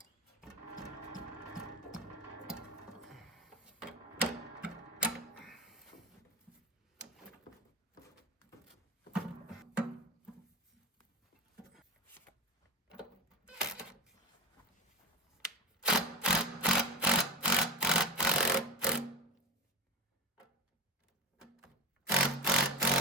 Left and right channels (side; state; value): both; normal; correlation 0.21